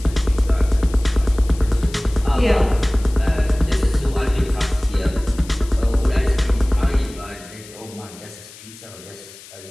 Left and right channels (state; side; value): noise; left; hiss, 19 dB below the sound